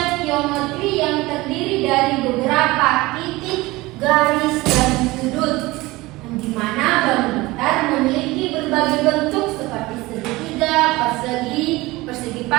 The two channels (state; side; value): quieter; left; 20.5 dB